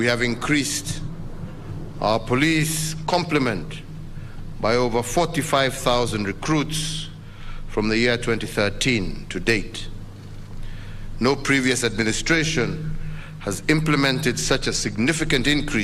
have increased our police complement by over 45,000 recruits from the year 2013 to date. No previous administration has implemented such a significant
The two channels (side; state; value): both; identical; correlation 1.00